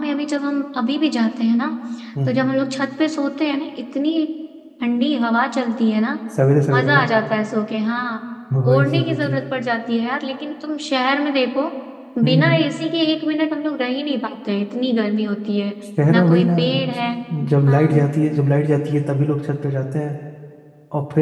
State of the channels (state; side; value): identical; both; correlation 1.00